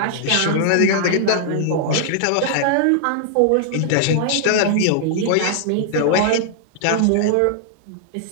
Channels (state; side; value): different; both; correlation -0.01